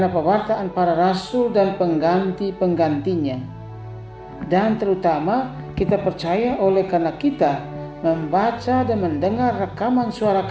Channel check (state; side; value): identical; both; correlation 1.00